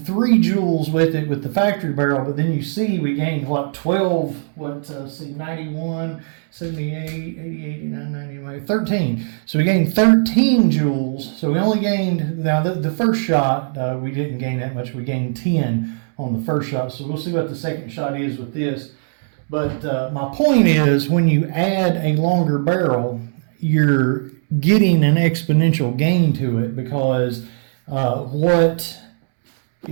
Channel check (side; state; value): left; silent; 66 dB below the other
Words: joules with it with the factory barrel, but then you see we gained 12, 91, 78, 80, 89, 90, 13. So we gained 13 joules. So we only gained, now the first shot, we didn't gain that much. We gained 10 on the first shot. So we'll see what the second shot is with this. But my point is, when you add a longer barrel, you're getting an exponential gain to it, because what